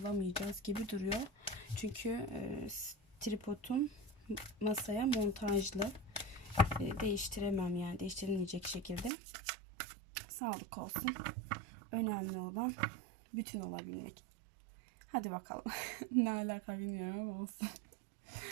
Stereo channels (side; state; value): left; drops out; at 9.1 s